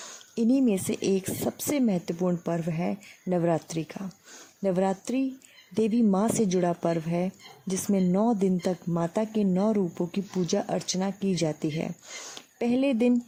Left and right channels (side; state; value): both; identical; correlation 1.00